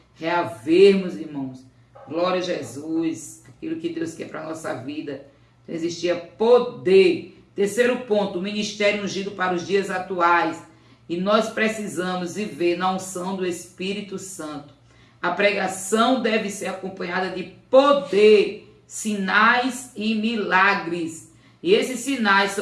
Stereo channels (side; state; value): both; identical; correlation 1.00